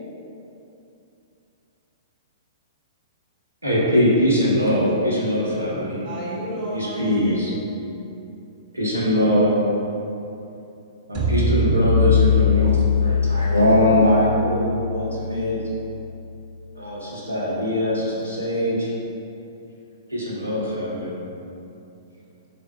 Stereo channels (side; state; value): both; inverted; correlation -0.46